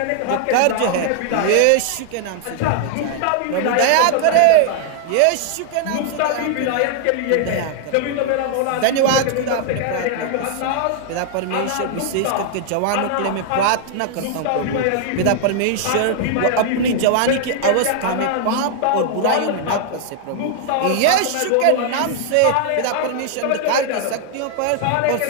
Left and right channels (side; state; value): both; different; correlation 0.00